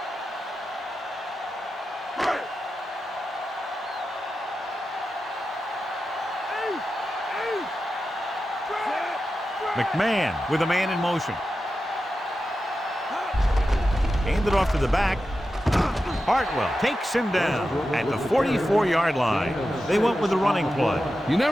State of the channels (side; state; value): both; normal; correlation 0.91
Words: McMahon with a man in motion. Handed off to the back. Hartwell takes him down at the 44-yard line. They went with the running play. You